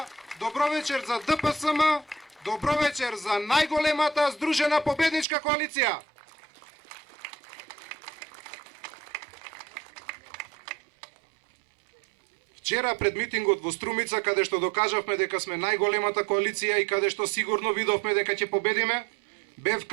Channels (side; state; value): left; drops out; at 5.2 s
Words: добро вечер за ДПСМ, добро вечер за најголемата здружена победничка коалиција. Вчера пред митингот во Струмица, каде што докажавме дека сме најголемата коалиција и каде што сигурно видовме дека ќе победиме, бев